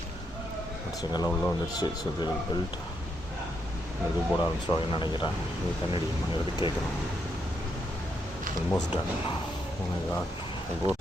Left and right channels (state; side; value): normal; both; correlation 0.79